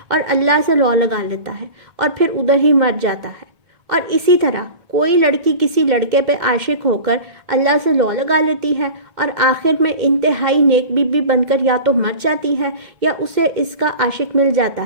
اور اللہ سے لو لگا لیتا ہے اور پھر ادھر ہی مر جاتا ہے۔ اور اسی طرح کوئی لڑکی کسی لڑکے پہ عاشق ہو کر اللہ سے لو لگا لیتی ہے اور آخر میں انتہائی نیک بی بی بن کر یا تو مر جاتی ہے یا اسے اس کا عاشق مل جاتا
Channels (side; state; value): left; late; 1.7 ms